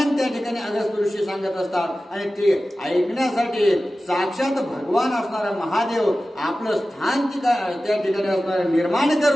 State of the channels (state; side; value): normal; both; correlation 0.95